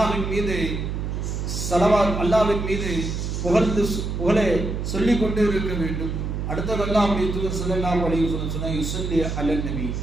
மீது ஸலவாத், அல்லாஹ்வின் மீது புகழை சொல்லிக் கொண்டே இருக்க வேண்டும். அடுத்தது அல்லாஹ்வுடைய தூதர் ஸல்லல்லாஹு அலைஹி வஸல்லம் சொன்னார், யுஸல்லி அலன் நபி,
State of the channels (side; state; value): right; noise; hum, 3 dB below the sound